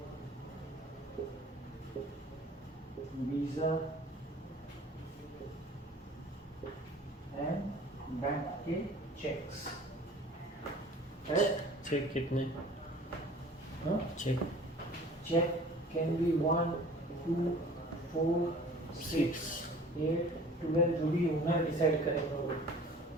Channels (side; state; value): both; normal; correlation 0.47